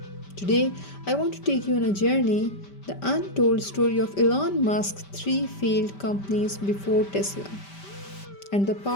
Today, I want to take you on a journey, the untold story of Elon Musk's three failed companies before Tesla, and the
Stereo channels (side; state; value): right; late; 5.1 ms